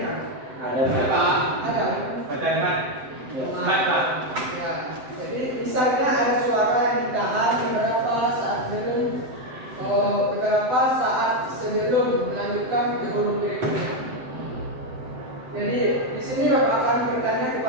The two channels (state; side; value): late; left; 7.8 ms